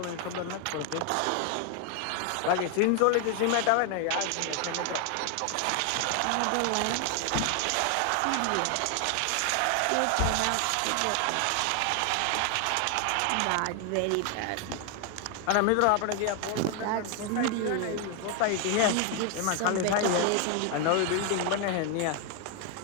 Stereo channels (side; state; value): both; different; correlation 0.00